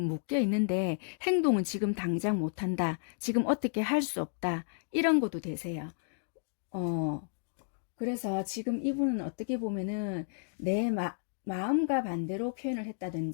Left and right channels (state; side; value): silent; right; digital silence